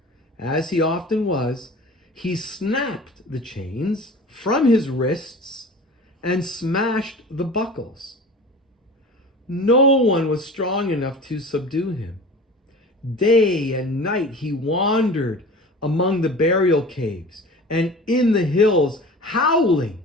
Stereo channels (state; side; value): normal; both; correlation 0.38